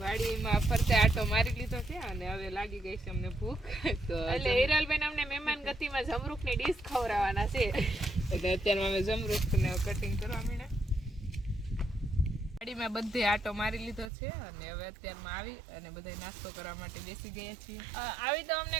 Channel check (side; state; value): left; drops out; at 14.1 s